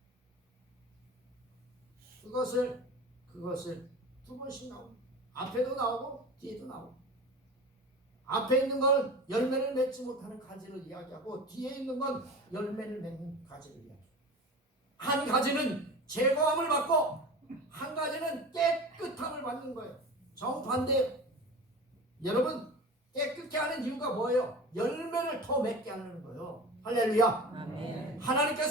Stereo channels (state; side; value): normal; both; correlation 0.34